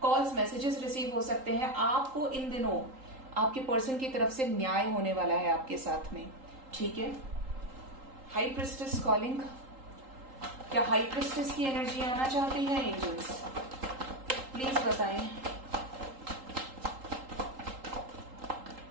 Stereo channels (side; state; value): left; late; 3.8 ms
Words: कॉल्स, मैसेजेस रिसीव हो सकते हैं। आपको इन दिनों आपके पर्सन की तरफ से न्याय होने वाला है आपके साथ में, ठीक है। हाई प्रिस्टेस कॉलिंग, क्या हाई प्रिस्टेस की एनर्जी आना चाहती है एंजल्स? प्लीज बताएं।